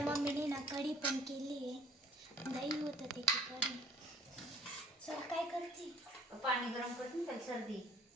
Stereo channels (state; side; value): normal; both; correlation 0.55